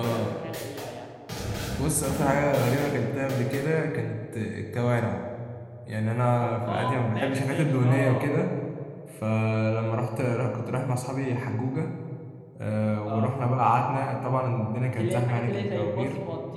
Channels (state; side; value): identical; both; correlation 1.00